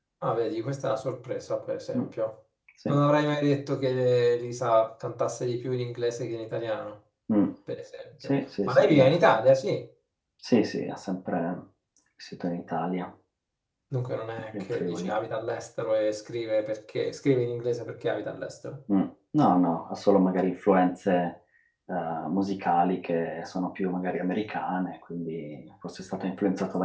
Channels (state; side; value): identical; both; correlation 1.00